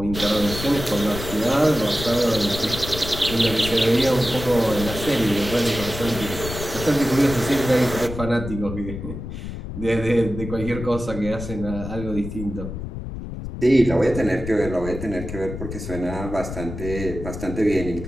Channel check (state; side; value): noise; left; rumble, 8 dB below the sound